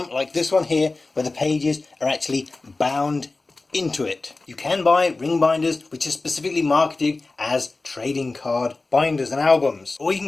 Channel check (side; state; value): right; quieter; 3.4 dB